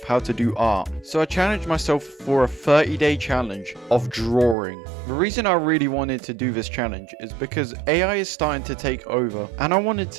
how to do art. So I challenged myself for a 30-day challenge of drawing. The reason I really wanted to do this challenge is because AI is starting to take over and I wanted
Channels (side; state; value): left; drops out; at 4.5 s